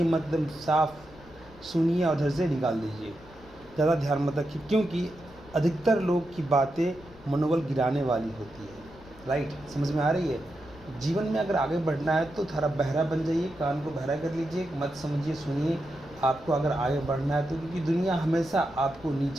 मतलब साफ सुनिए और उधर से निकाल दीजिए, ज़्यादा ध्यान मत रखिए, क्योंकि अधिकतर लोग की बातें मनोबल गिराने वाली होती है, राइट। समझ में आ रही है। जीवन में अगर आगे बढ़ना है तो थोड़ा बहरा बन जाइए, कान को बहरा कर लीजिए, मत समझिए, सुनिए। आपको अगर आगे बढ़ना है तो, क्योंकि दुनिया हमेशा आपको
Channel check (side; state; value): left; noise; rumble, 22 dB below the sound